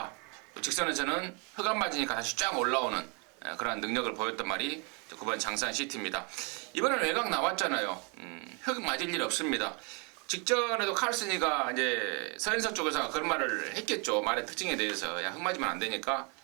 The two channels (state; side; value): quieter; left; 33.7 dB